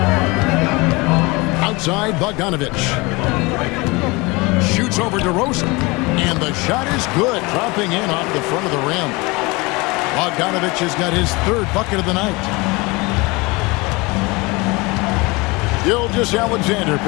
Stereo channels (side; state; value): right; quieter; 24.9 dB